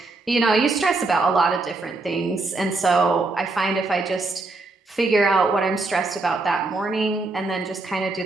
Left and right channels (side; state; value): left; quieter; 3.3 dB